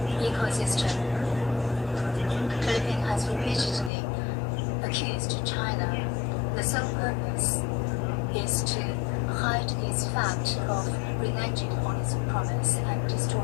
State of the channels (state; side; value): drops out; right; at 3.9 s